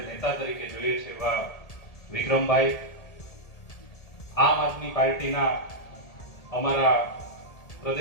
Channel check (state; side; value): late; right; 1.7 ms